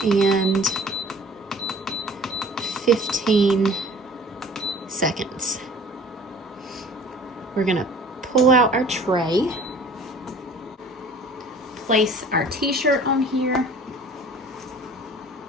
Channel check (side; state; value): both; normal; correlation 0.48